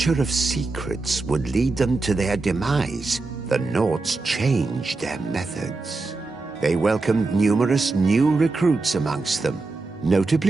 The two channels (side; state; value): left; quieter; 3.6 dB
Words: of secrets would lead them to their demise, the Nords changed their methods. They welcomed numerous new recruits amongst them,